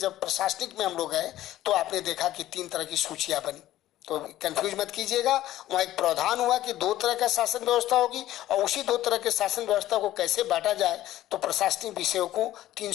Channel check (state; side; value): quieter; right; 14.3 dB